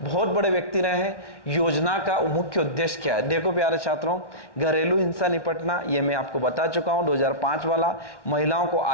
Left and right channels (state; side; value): late; right; 1.1 ms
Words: बहुत बड़े व्यक्ति रहे हैं। योजना का मुख्य उद्देश्य क्या है, देखो प्यारे छात्रों, घरेलू हिंसा निपटना, ये मैं आपको बता चुका हूं 2005 वाला। महिलाओं को